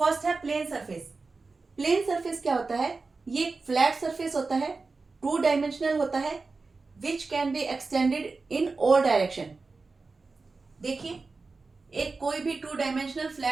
है प्लेन सरफेस। प्लेन सरफेस क्या होता है? ये एक फ्लैट सरफेस होता है, 2 डायमेंशनल होता है, which can be extended in all direction. देखिए, एक कोई भी 2 dimensional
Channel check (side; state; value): left; quieter; 4.0 dB